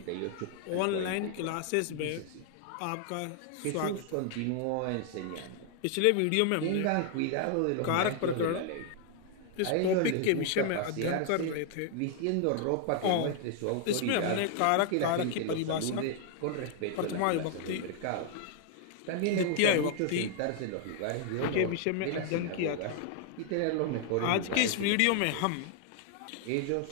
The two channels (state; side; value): different; both; correlation 0.00